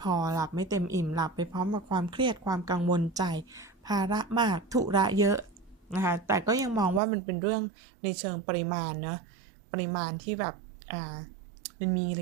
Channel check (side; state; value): left; drops out; at 7.0 s